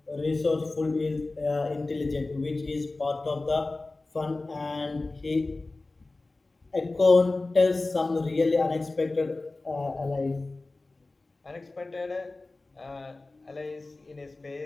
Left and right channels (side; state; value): right; quieter; 3.2 dB